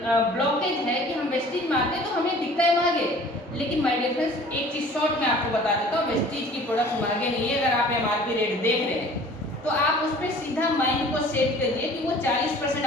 ब्लॉकेज है कि हम वेस्टीज में आते हैं तो हमें दिखता है महंगे। लेकिन माय डियर फ्रेंड्स, एक चीज शॉर्ट में आपको बता देता हूँ, वेस्टीज की प्रोडक्ट्स महंगे नहीं है। अगर आप एमआरपी रेट देख रहे हैं तो आप उस पर सीधा माइंड को सेट करिए कि वो 40%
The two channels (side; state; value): both; normal; correlation 0.48